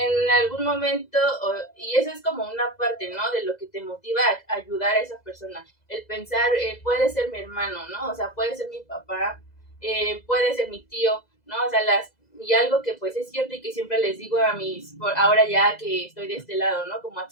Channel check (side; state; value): right; late; 2.0 ms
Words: algún momento, y eso es como una parte, ¿no? De lo que te motiva a ayudar a esa persona. El pensar, puede ser mi hermano, ¿no? O sea, puede ser mi papá, puede ser mi tío, ¿no? O sea, y algo que pues es cierto y que siempre les digo ahora ya que estoy de este lado, ¿no? Como